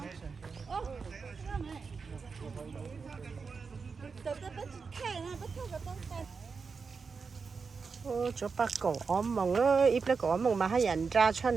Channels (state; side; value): quieter; left; 5.1 dB